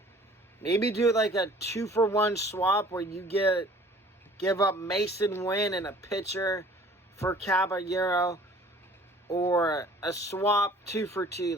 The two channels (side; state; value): both; normal; correlation 0.51